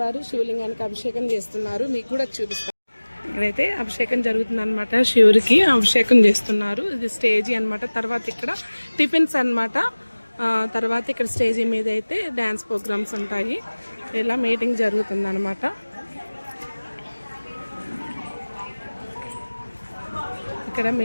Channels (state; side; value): inverted; both; correlation -1.00